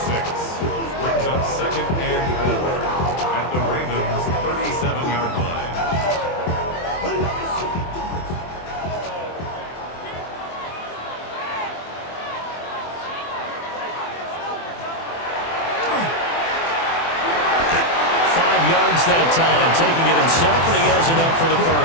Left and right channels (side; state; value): right; late; 24 ms